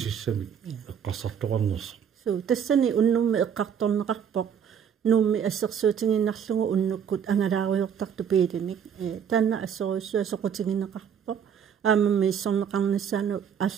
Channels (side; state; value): left; quieter; 7.9 dB